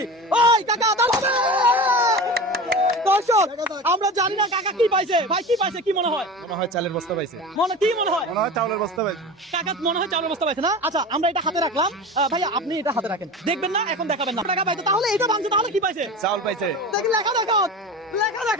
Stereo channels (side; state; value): both; normal; correlation 0.30